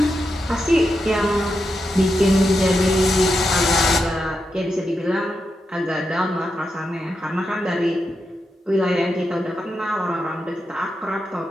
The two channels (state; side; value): normal; both; correlation 0.86